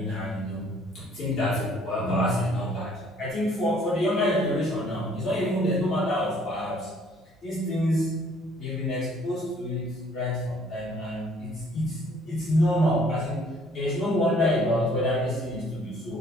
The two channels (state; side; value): normal; both; correlation 0.59